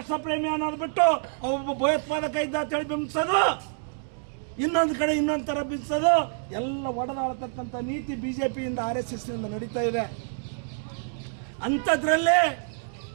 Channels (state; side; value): silent; left; digital silence